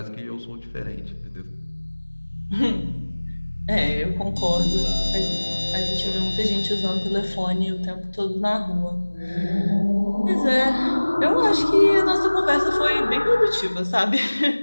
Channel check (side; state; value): both; inverted; correlation -1.00